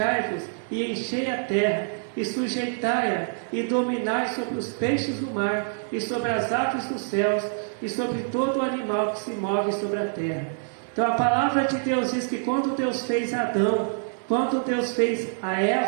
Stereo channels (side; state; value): left; silent; digital silence